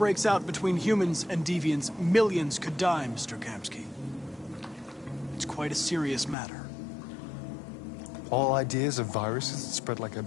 out between humans and deviants, millions could die, Mr. Kamsky. It's quite a serious matter. All ideas of viruses that spread like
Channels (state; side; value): drops out; right; at 6.4 s